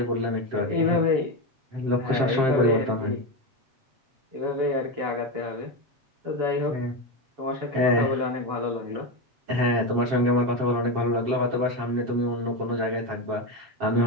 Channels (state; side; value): late; left; 7.5 ms